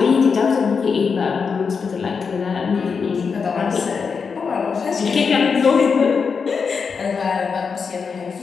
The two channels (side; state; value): right; quieter; 5.6 dB